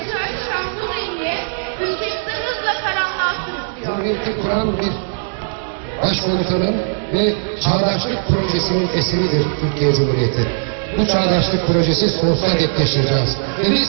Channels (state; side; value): silent; left; 66 dB below the other